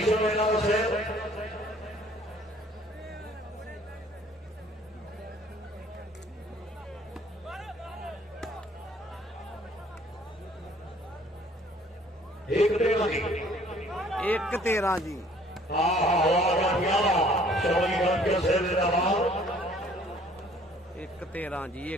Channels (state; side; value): normal; both; correlation 0.57